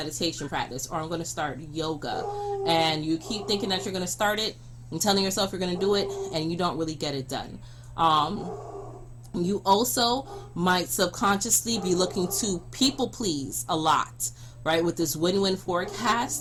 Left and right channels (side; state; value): both; identical; correlation 1.00